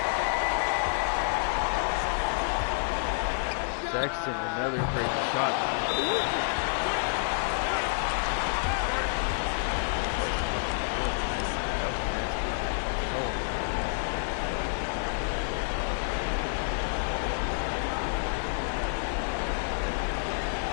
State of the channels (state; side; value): silent; right; 59 dB below the other